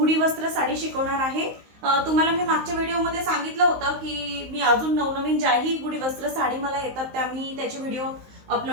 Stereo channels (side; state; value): left; late; 19 ms